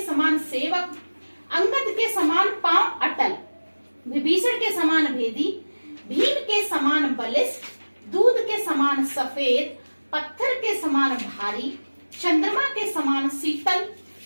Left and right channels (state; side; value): inverted; both; correlation -1.00